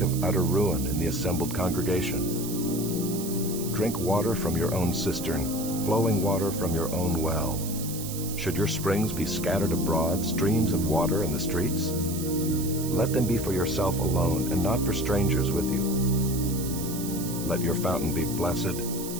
of utter ruin in the assembled congregation. Drink water from your own cistern, flowing water from your own well. Should your springs be scattered abroad, streams of water in the streets? Let them be for yourself alone, and not for strangers with you. Let your fountain be blessed,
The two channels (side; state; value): right; noise; hiss, 9 dB below the sound